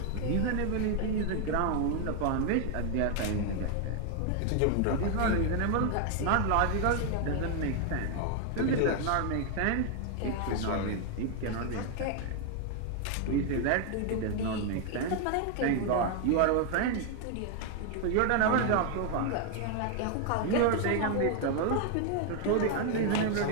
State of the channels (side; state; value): both; different; correlation 0.00